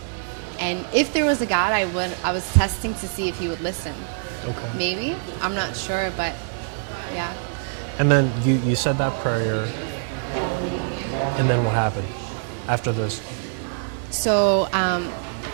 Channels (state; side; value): silent; left; digital silence